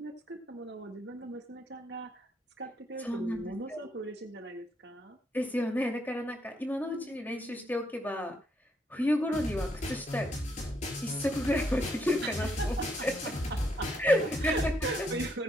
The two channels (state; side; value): normal; both; correlation 0.74